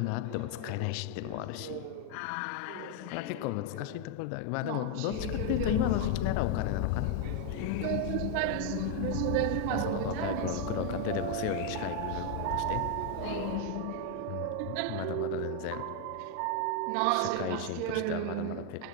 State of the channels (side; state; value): both; different; correlation 0.00